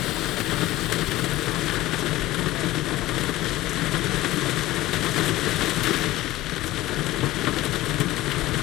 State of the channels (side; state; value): right; quieter; 16.7 dB